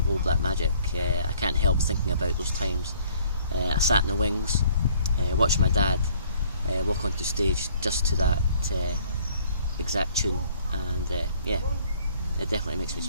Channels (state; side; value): inverted; both; correlation -0.58